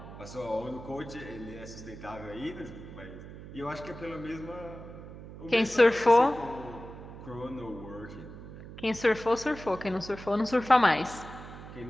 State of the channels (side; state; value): right; noise; hum, 14 dB below the sound